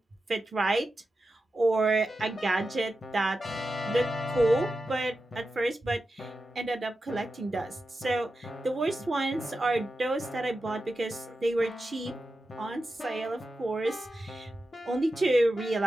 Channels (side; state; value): both; normal; correlation 0.91